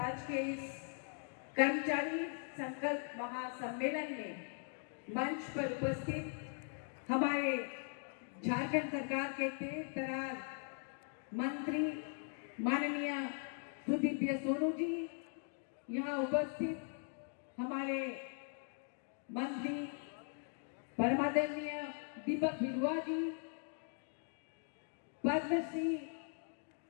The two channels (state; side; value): silent; right; 51 dB below the other